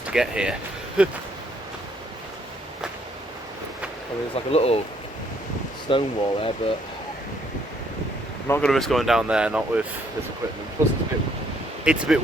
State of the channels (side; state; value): both; normal; correlation 0.68